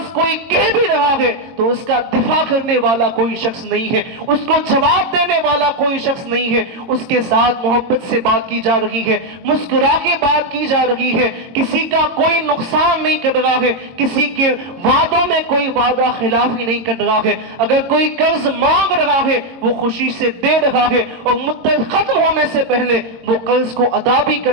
کوئی کہہ بھی رہا ہے تو اس کا دفاع کرنے والا کوئی شخص نہیں ہے, اس کو جواب دینے والا کوئی شخص نہیں ہے, اس کے ساتھ محبت سے بات کی جا رہی ہے, مسکرا کے بات کی جا رہی ہے, کسی کا کوئی نقصان نہیں کر رہا ہے, کسی کے وعدوں میں کوئی وعدہ خلافی نہیں کر رہا ہے. اگر کوئی قرض مانگ رہا ہے وہ خوشی سے دے رہا ہے اور مدت ختم ہونے سے پہلے وہ قرض کو ادا بھی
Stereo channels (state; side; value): late; left; 22 ms